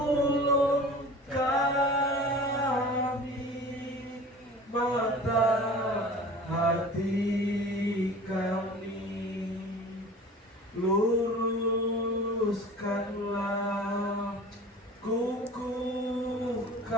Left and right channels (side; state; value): both; normal; correlation 0.41